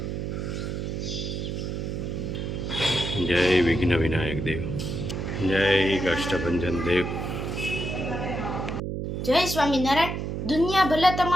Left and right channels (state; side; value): noise; right; hum, 3 dB below the sound